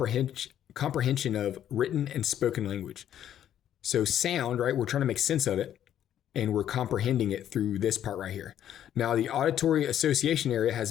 of written and spoken language. So sound, right? We're trying to make sense of it, and we're comprehending it through this part right here. Now, the auditory association area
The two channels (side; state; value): right; quieter; 10.7 dB